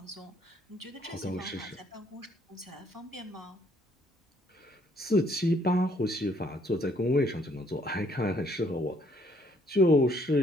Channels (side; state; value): both; normal; correlation 0.66